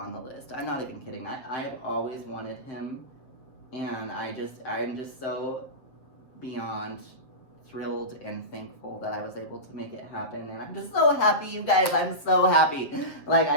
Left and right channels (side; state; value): right; late; 7.5 ms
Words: the list. I'm not even kidding. I've always wanted him, and I'm just so beyond thrilled and thankful that I was able to make it happen. And I'm just so happy, you guys. I'm so happy. Like,